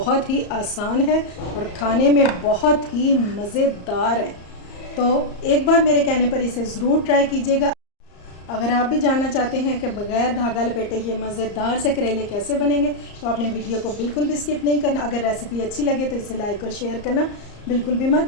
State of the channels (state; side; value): late; right; 34 ms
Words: ही आसान है और खाने में बहुत ही मज़ेदार है, तो एक बार मेरे कहने पर इसे ज़रूर ट्राई कीजिएगा। अगर आप भी जानना चाहते हैं कि बग़ैर धागा लपेटे ये मज़ेदार से करेले कैसे बनेंगे तो आपने वीडियो को बिल्कुल भी स्किप नहीं करना। अगर रेसिपी अच्छी लगे तो इसे लाइक और शेयर करना बिल्कुल भी मत